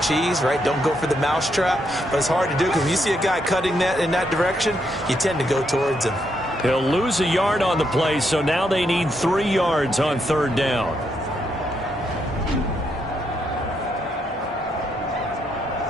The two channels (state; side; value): normal; both; correlation 0.78